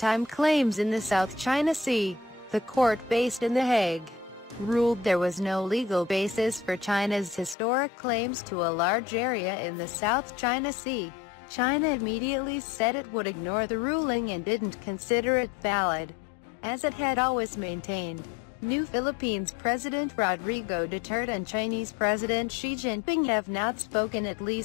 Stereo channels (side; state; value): right; drops out; at 7.6 s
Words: claims in the South China Sea. The court, based in The Hague, ruled there was no legal basis for China's historic claims to a large area in the South China Sea. China immediately said it would ignore the ruling and didn't consider it valid, as it had always maintained. New Philippines President Rodrigo Duterte and Chinese President Xi Jinping have not spoken at